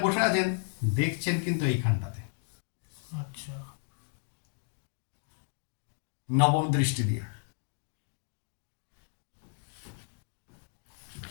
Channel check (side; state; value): right; silent; digital silence